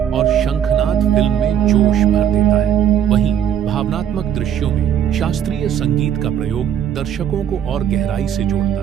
और शंखनाद फिल्म में जोश भर देता है। वहीं भावनात्मक दृश्यों में शास्त्रीय संगीत का प्रयोग दर्शकों को और गहराई से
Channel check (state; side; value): quieter; left; 9.2 dB